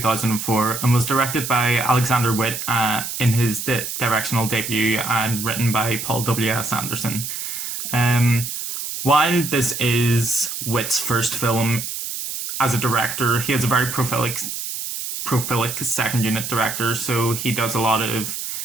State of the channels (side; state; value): right; noise; hiss, 6 dB below the sound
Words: and was directed by Alexander Witt in his directional debut and written by Paul W.S. Anderson. Um, while this is Witt's first film as a director, he is a very prolific second unit director, so he does a lot of